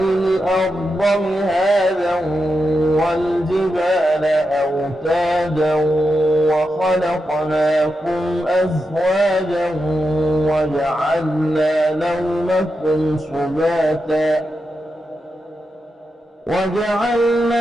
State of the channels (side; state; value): both; normal; correlation 0.87